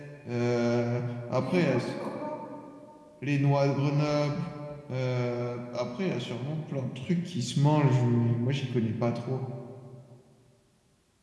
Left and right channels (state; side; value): identical; both; correlation 1.00